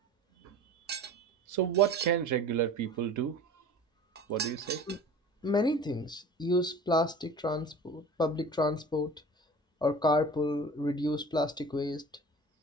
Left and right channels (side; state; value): both; normal; correlation 0.40